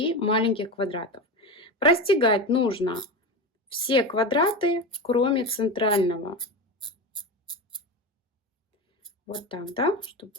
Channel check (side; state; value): both; normal; correlation 0.22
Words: маленьких квадратов. Простегать нужно все квадраты, кроме центрального. Вот так, да, чтобы